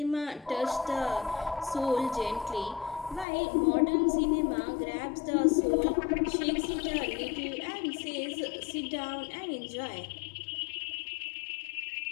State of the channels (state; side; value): drops out; right; at 3.2 s